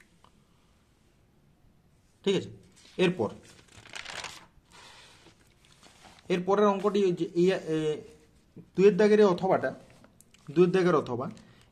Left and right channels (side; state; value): both; identical; correlation 1.00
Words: ঠিক আছে, এরপরের অঙ্কটি 2 এর দাগের অথবাটা, 2 এর দাগের অথবা